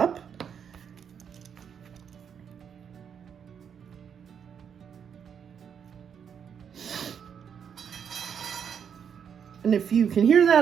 And if you can hear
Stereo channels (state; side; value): quieter; left; 7.6 dB